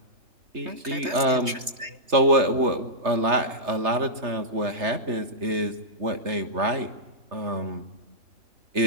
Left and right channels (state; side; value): late; left; 3.2 ms